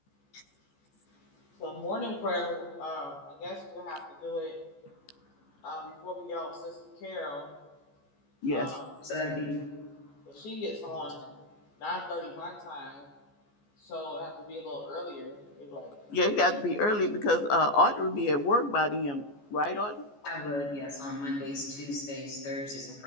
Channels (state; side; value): late; right; 14 ms